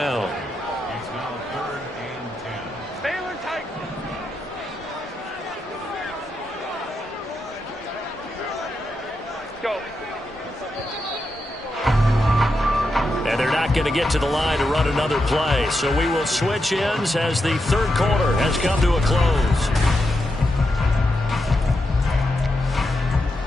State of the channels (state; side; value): normal; both; correlation 0.86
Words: And they're not going to get to the line to run another play. So we will switch ends as the 3rd quarter has come to a close.